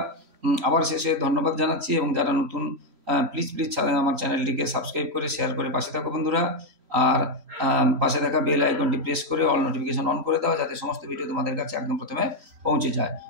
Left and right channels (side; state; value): left; late; 3.0 ms